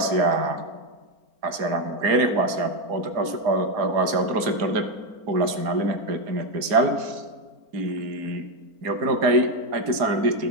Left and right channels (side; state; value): left; late; 4.4 ms